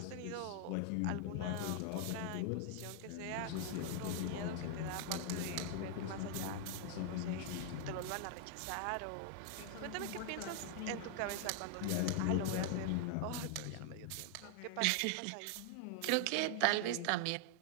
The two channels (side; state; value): both; different; correlation 0.00